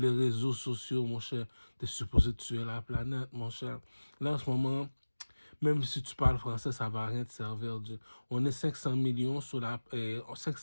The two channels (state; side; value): inverted; both; correlation -1.00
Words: réseaux sociaux, mon cher. Tu es supposé tuer la planète, mon cher. Là, en ce moment, même si tu parles français, ça va rien te servir. On est 500 millions